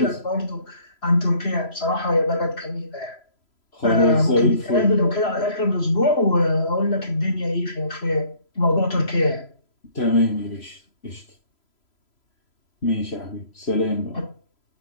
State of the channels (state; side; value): late; right; 3.0 ms